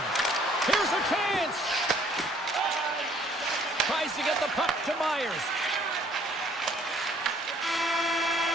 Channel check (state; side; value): normal; both; correlation 0.61